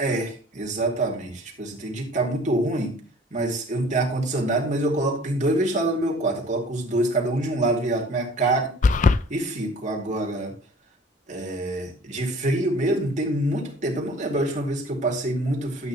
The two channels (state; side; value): normal; both; correlation 0.49